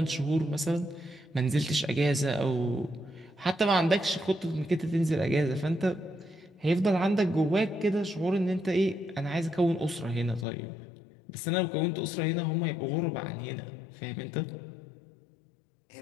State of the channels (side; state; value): right; drops out; at 10.5 s